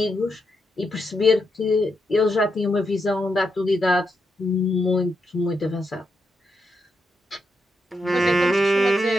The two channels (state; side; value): normal; both; correlation 0.83